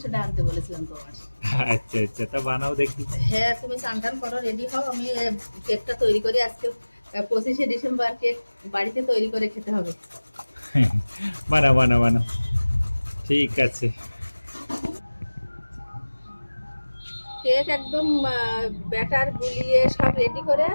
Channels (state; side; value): inverted; both; correlation -1.00